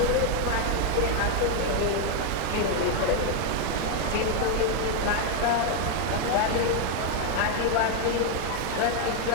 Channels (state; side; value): different; both; correlation 0.01